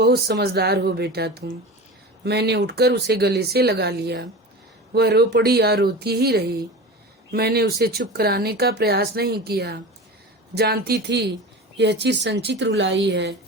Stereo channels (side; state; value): both; normal; correlation 0.31